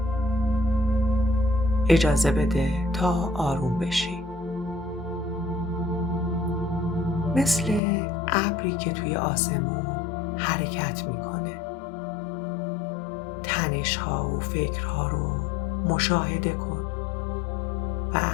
اجازه بده تا آروم بشی. مثل ابری که توی آسمون حرکت میکنه. تنش‌ها و فکرها رو مشاهده کن و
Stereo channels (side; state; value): right; drops out; at 7.8 s